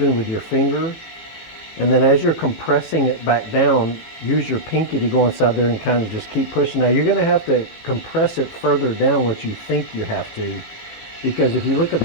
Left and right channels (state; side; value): late; right; 18 ms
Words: with your finger. And then as you're compressing it back down, use your pinky to go inside there and kind of just keep pushing. Now you're going to have to compress it further down what you think you have to, because if you look at